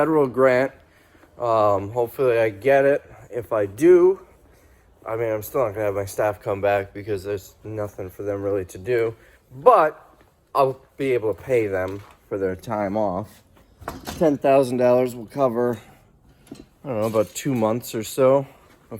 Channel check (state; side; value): identical; both; correlation 1.00